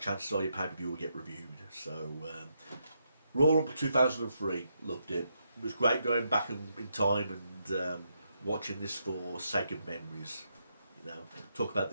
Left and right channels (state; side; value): inverted; both; correlation -0.80